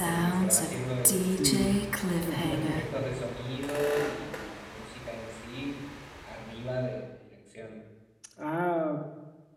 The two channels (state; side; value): identical; both; correlation 1.00